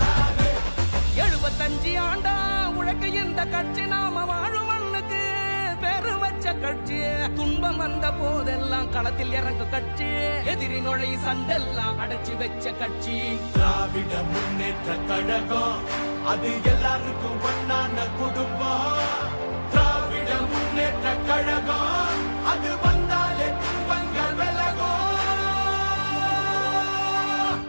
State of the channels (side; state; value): both; inverted; correlation -1.00